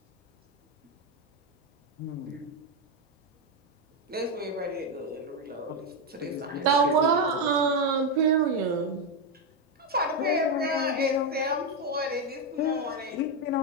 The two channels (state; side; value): normal; both; correlation 0.06